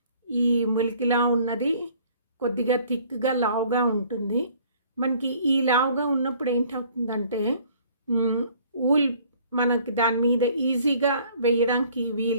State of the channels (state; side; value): inverted; both; correlation -0.56